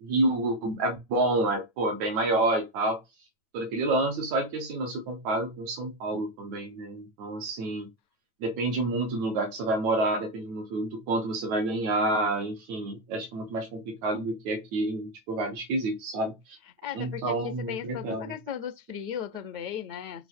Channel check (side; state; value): left; late; 9.1 ms